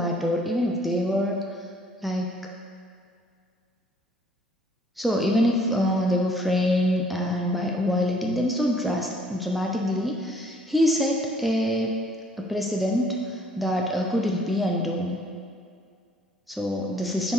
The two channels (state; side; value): normal; both; correlation 0.61